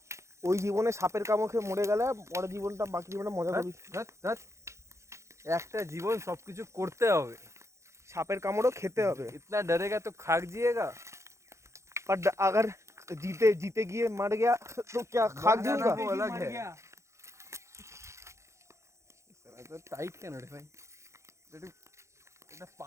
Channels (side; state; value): left; late; 0.14 ms